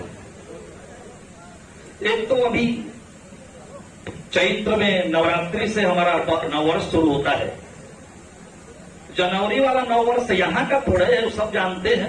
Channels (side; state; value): both; identical; correlation 1.00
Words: एक तो अभी चैत्र में नवरात्रि से हमारा नववर्ष शुरू होता है। जनवरी वाला नववर्ष यहां का थोड़ा है, वो सब जानते हैं।